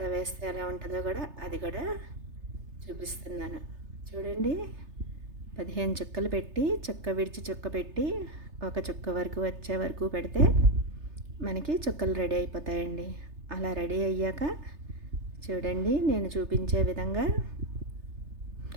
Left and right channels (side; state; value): left; late; 3.3 ms